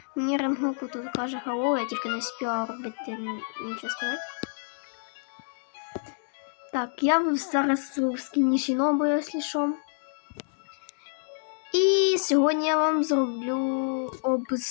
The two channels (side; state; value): right; silent; digital silence